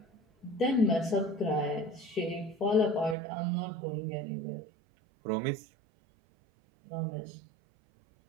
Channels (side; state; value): left; drops out; at 3.2 s